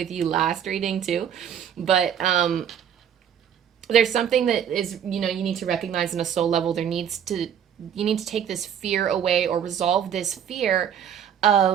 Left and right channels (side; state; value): left; quieter; 8.8 dB